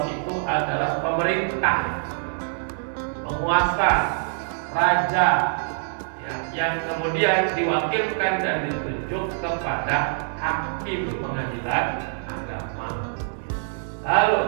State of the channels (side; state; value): left; silent; digital silence